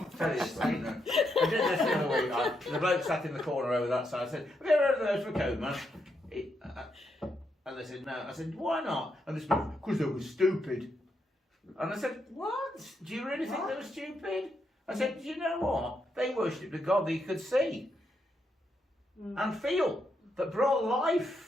Tell you this, I did this the other week. The bloke sat in the corner over that side. I said, "Have you ever heard of the ghost of a caveman?" And they said, "No." I said, "Why not?" And they said, "Because they were stupid." And I said, "What? Do you really think they were stupid?" I said, "Do you know what? They worshipped a god that you could see and feel, that brought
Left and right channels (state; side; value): normal; both; correlation 0.80